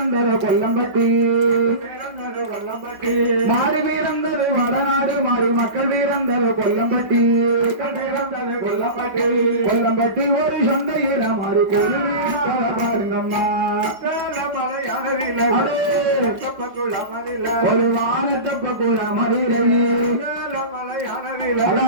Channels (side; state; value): left; late; 5.3 ms